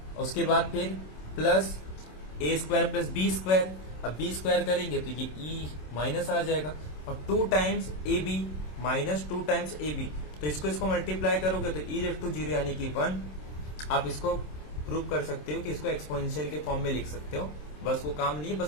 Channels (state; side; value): late; right; 27 ms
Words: उसके बाद फिर plus A square plus B square. अब B स्क्वायर करेंगे तो ये E माइनस आ जाएगा, और 2 times AB minus 2 times AB, तो इसको मल्टीप्लाई करोगे तो E/0 यानी कि 1। आप इसको प्रूव कर सकते हो कि इसको एक्सपोनेंशियल के फॉर्म में लिख सकते हो, बस वो काम नहीं है,